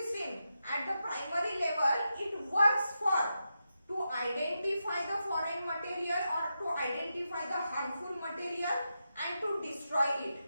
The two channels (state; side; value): inverted; both; correlation -0.87